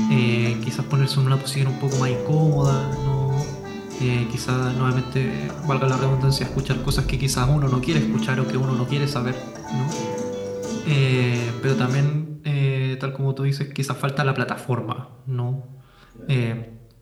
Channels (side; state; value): both; identical; correlation 1.00